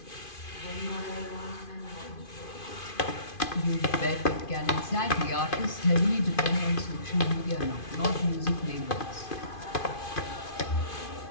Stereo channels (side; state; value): right; late; 2.5 ms